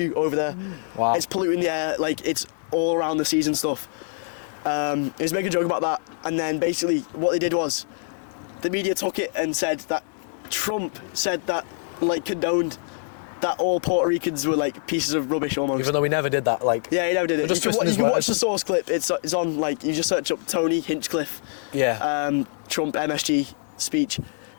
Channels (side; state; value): right; silent; 62 dB below the other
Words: over there. Wow. It's polluting the air, it's all around the seas and stuff. He was making a joke about that, and then basically what they did was, the media took it and said that Trump said that, condoned that all Puerto Ricans were pieces of rubbish almost. Even though we never did that, Yeah, he never did it. You can watch the source clip. It's on you just search up Tony Hinchcliffe. Yeah. Trump MSG speech.